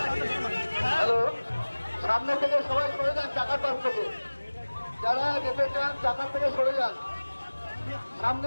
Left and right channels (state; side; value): inverted; both; correlation -1.00